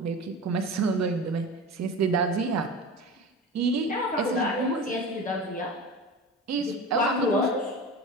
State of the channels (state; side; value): normal; both; correlation 0.31